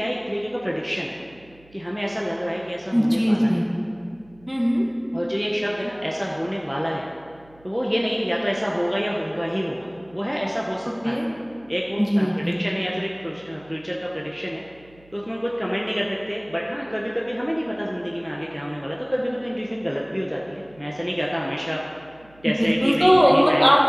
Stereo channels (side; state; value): right; noise; hum, 27 dB below the sound